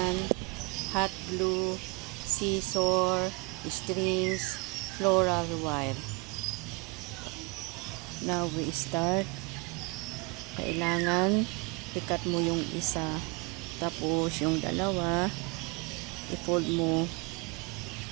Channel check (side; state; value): left; quieter; 27.5 dB